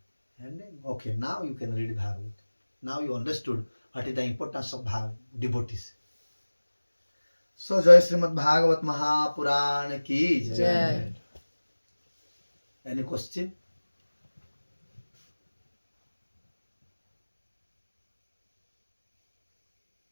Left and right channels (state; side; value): inverted; both; correlation -1.00